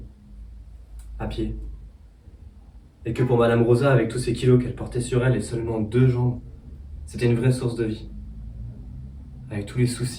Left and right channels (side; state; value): both; identical; correlation 1.00